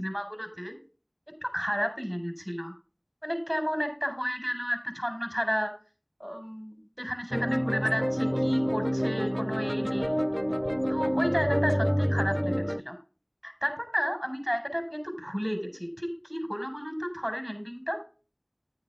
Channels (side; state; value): both; identical; correlation 1.00